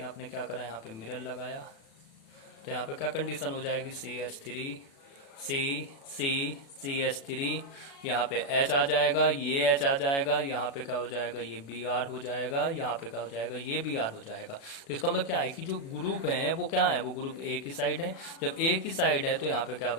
आपने क्या करा, यहाँ पे मिरर लगाया, तो यहाँ पे क्या कंडीशन हो जाएगी, CH3 CH3, यहाँ पे H आ जाएगा, ये H आ जाएगा, यहाँ पे क्या हो जाएगा, ये Br हो जाएगा, यहाँ पे क्या हो जाएगा, ये Br हो जाएगा। तो इसका मतलब क्या है कि जो ग्रुप है वो क्या है, वो ग्रुप एक ही साइड है। जब एक ही साइड है तो यहाँ पे क्या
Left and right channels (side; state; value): right; late; 36 ms